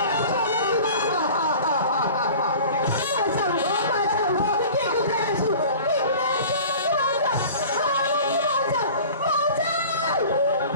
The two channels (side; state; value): both; inverted; correlation -0.42